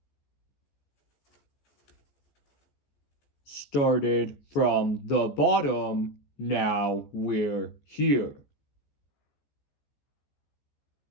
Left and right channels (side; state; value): right; late; 14 ms